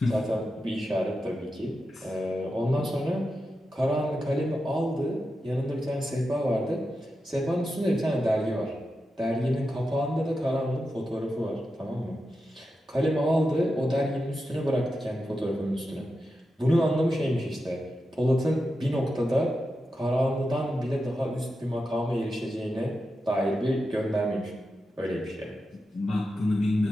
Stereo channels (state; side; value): normal; both; correlation 0.89